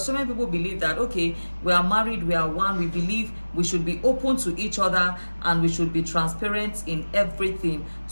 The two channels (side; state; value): both; inverted; correlation -1.00